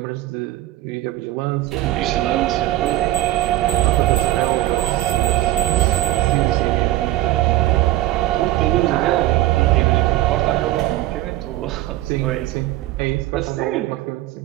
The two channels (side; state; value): left; quieter; 15.8 dB